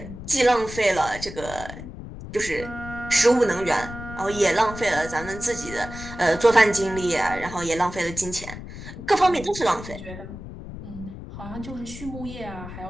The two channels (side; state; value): left; noise; rumble, 11 dB below the sound